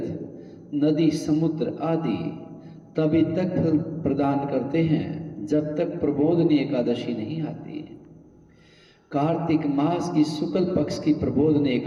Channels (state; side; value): identical; both; correlation 1.00